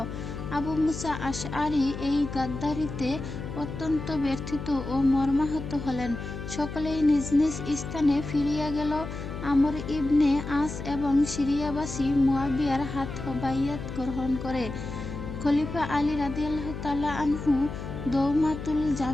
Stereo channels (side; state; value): left; noise; hum, 8 dB below the sound